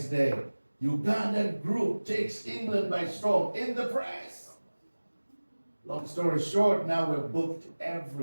day, Ugandan group takes England by storm in the press. Long story short, now we're booked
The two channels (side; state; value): both; inverted; correlation -1.00